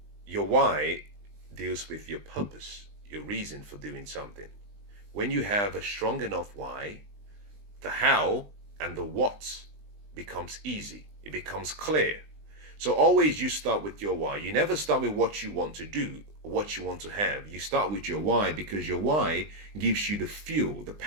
Your why deals with your purpose, your reason for doing something. When you have a strong enough why, the how and the what becomes easy. It becomes clear. So always you start with your why. You never start with what you want to do or what you want to have. You start with your why, because your why gives you the fuel, the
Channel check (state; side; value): late; left; 20 ms